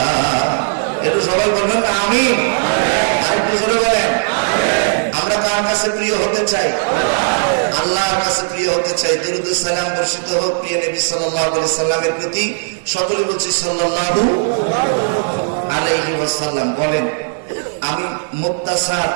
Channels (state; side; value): silent; left; digital silence